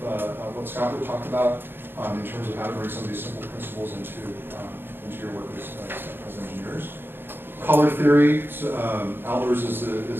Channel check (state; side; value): late; left; 0.10 ms